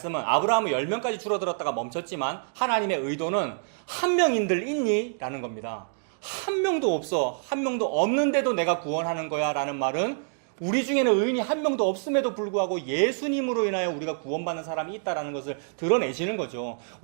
아브라함은 10명까지 줄어들었다가 멈췄지만 하나님의 의도는 한 명인들 있니? 라는 겁니다. 한 명도 없어. 한 명도 없는데도 내가 구원하는 거야 라는 말은 우리 중에는 의인이 한 명도 없음에도 불구하고 예수님으로 인하여 우리가 구원받는 사람이 있다라는 것을 드러내시는 거죠.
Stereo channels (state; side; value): silent; left; digital silence